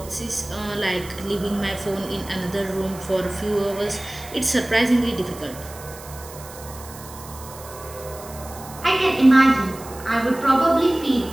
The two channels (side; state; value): right; noise; hiss, 17 dB below the sound